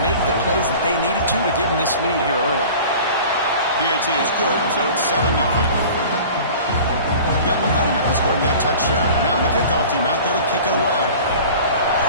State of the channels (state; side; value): inverted; both; correlation -0.42